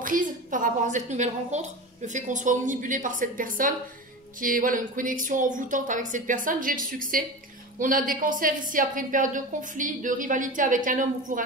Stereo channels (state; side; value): normal; both; correlation 0.28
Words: par rapport à cette nouvelle rencontre. Le fait qu'on soit omnibulé par cette personne, qui est voilà, une connexion envoûtante avec cette personne, j'ai le succès. On a des cancers ici après une période de conflit, de rivalité avec un homme ou pour